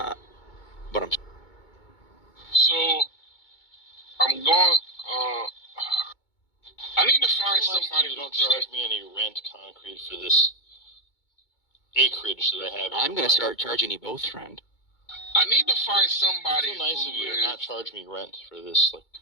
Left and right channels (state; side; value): late; right; 2.2 ms